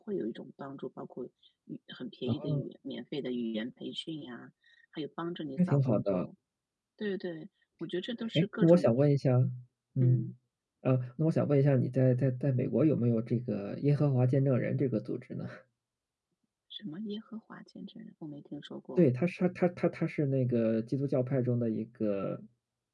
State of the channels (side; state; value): both; identical; correlation 1.00